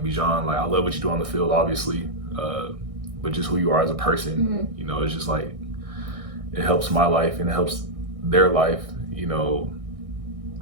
Bijan, like I love what you do on the field, obviously, but just who you are as a person. You know, it's just like it helps my life and it helps their life. You know,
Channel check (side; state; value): left; late; 1.6 ms